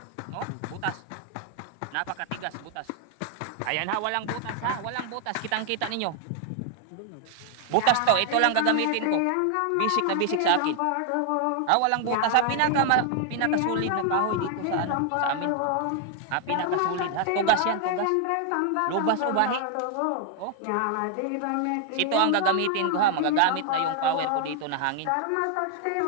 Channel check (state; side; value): different; both; correlation 0.00